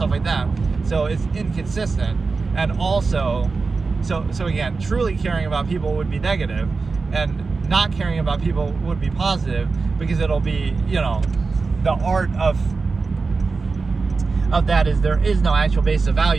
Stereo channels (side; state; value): left; quieter; 4.3 dB